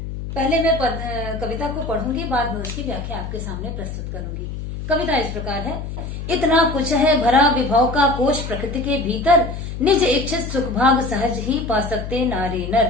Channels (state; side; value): noise; left; hum, 7 dB below the sound